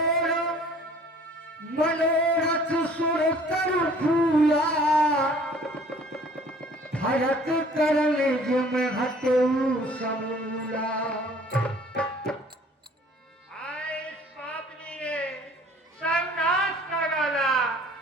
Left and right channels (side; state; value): both; normal; correlation 0.53